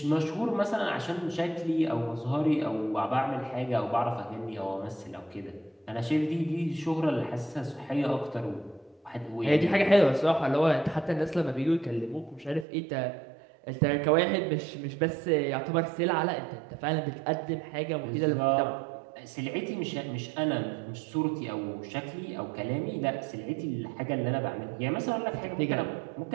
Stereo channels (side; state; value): left; drops out; at 12.7 s